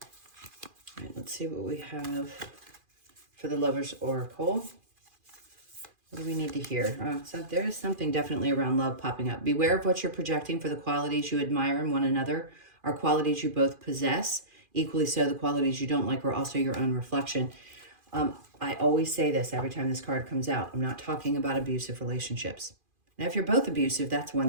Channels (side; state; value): left; late; 2.4 ms